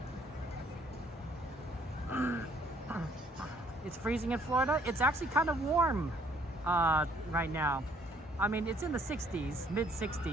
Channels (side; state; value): both; normal; correlation 0.63